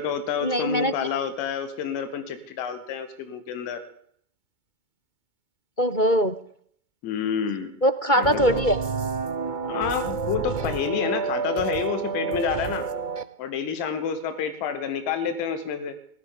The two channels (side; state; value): right; late; 2.2 ms